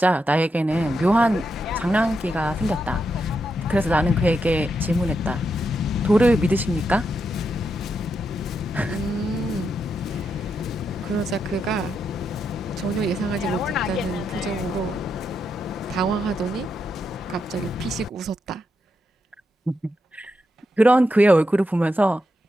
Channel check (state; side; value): normal; both; correlation 0.84